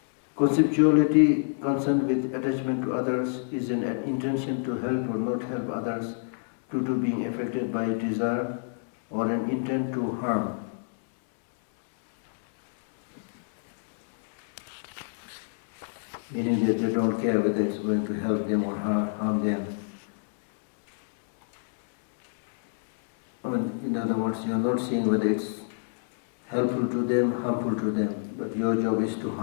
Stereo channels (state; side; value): silent; right; digital silence